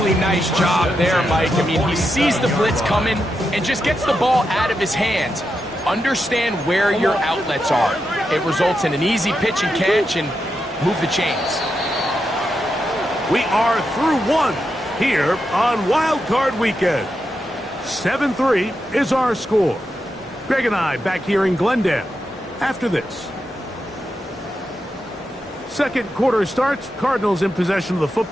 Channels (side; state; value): both; normal; correlation 0.86